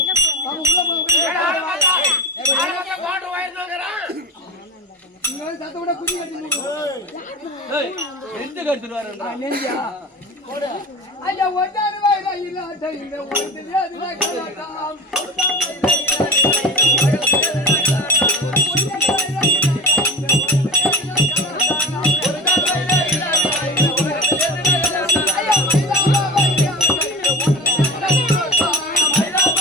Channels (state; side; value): normal; both; correlation 0.29